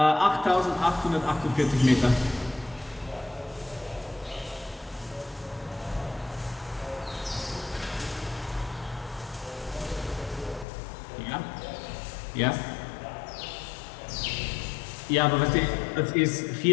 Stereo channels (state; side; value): drops out; right; at 10.7 s